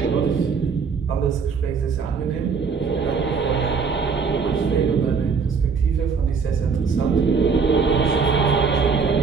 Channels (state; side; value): quieter; left; 5.5 dB